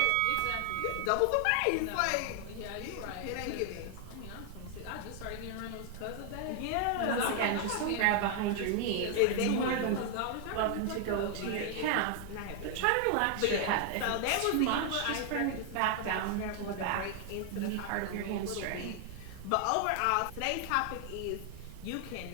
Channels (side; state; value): both; different; correlation 0.00